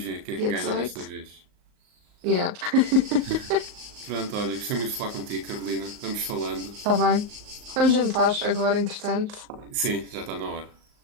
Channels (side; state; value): left; late; 38 ms